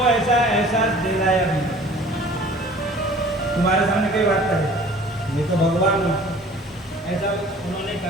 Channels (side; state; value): both; normal; correlation 0.49